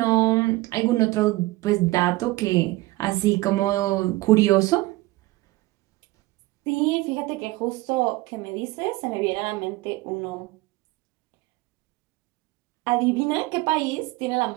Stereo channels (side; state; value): left; quieter; 19.8 dB